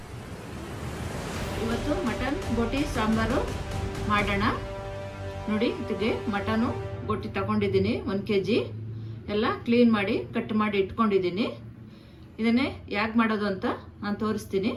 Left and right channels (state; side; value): identical; both; correlation 1.00